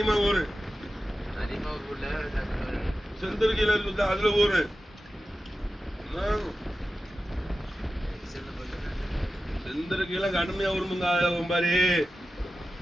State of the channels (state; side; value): normal; both; correlation 0.93